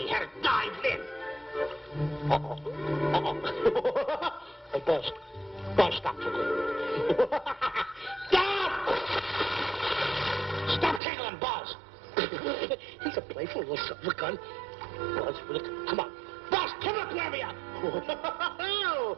He had to dive in. Hey, Buzz. Buzz, stop. Stop! Stop tickling Buzz. He's a playful little son of a gun. Buzz, come on. Buzz, come up, wherever you are.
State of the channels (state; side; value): drops out; left; at 11.0 s